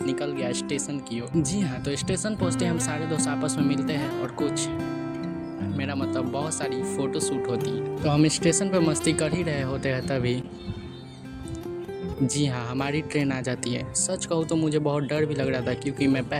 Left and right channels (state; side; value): identical; both; correlation 1.00